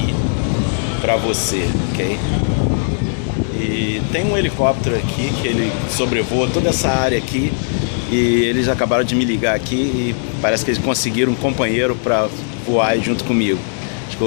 pra você, ok? E tem um helicóptero aqui que ele sobrevoa toda essa área aqui e eles acabaram de me ligar aqui e parece que eles conseguiram um companheiro pra voar junto comigo. Acho que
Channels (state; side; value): silent; right; digital silence